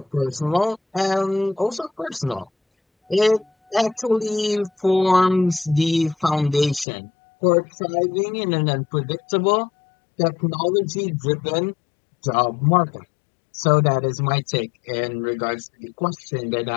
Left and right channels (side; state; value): right; drops out; at 6.9 s